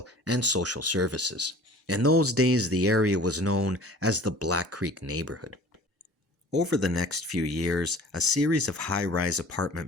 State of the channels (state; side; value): normal; both; correlation 0.45